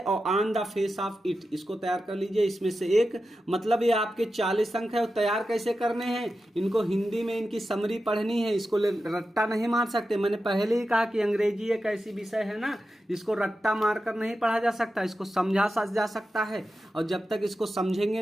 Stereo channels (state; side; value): normal; both; correlation 0.91